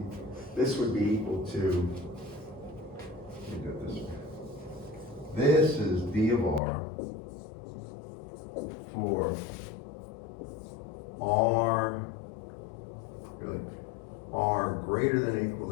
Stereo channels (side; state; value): right; drops out; at 6.6 s